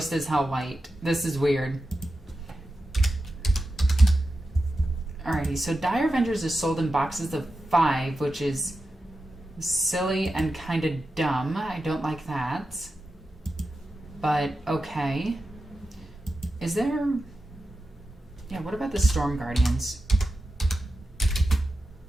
as hell white. This is weird. Alrighty, so Dire Avengers is sold in boxes of 5, which is silly and kind of dumb. I don't like that. But, okay. Is there... Yeah, what about the Storm Guardians?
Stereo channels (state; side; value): normal; both; correlation 0.91